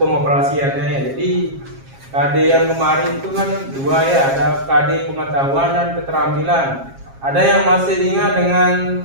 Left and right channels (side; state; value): left; late; 7.4 ms